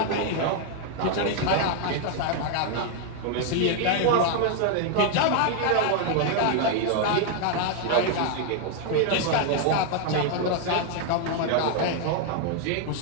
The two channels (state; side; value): different; both; correlation 0.00